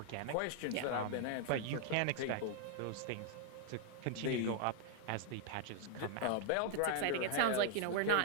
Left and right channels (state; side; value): different; both; correlation -0.01